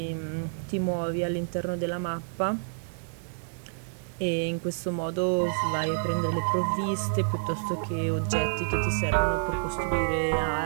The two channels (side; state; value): left; silent; digital silence